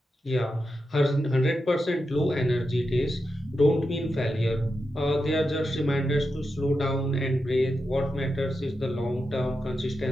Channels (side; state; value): both; normal; correlation 0.88